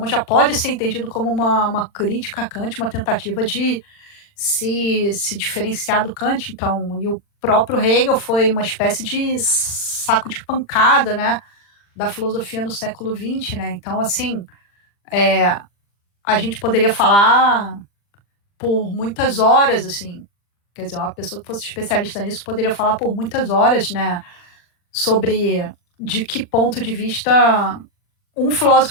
já pode ser entendido como uma crítica a Kant, uma tentativa de se diferenciar do Kant. Então, e o próprio Hegel foi uma espécie de saco de pancada, né? Da filosofia no século XX, né? Então, assim, a gente poderia falar por muitas horas, assim, quer dizer, uma pessoa que fosse especialista nisso poderia falar por muitas horas, né, sobre de que ponto de vista um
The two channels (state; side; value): late; right; 40 ms